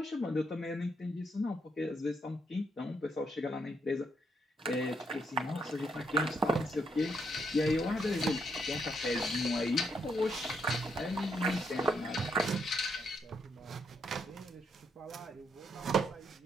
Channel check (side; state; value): both; normal; correlation 0.76